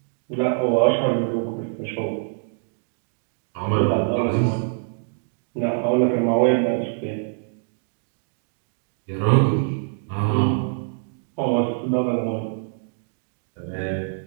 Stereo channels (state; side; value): silent; left; digital silence